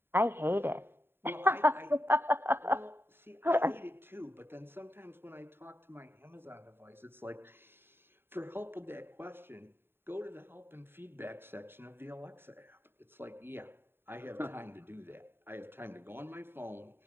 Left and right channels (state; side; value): late; left; 0.11 ms